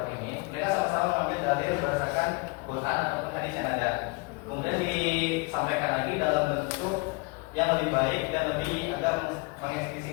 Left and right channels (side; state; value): right; quieter; 27.9 dB